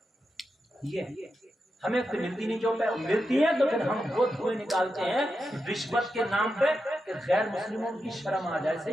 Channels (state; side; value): normal; both; correlation 0.88